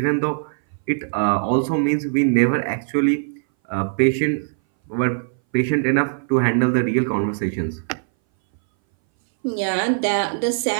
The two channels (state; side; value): silent; left; 61 dB below the other